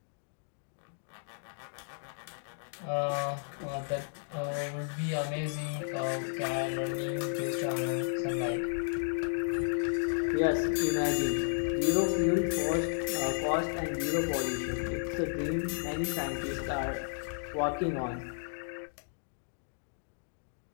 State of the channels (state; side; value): silent; right; digital silence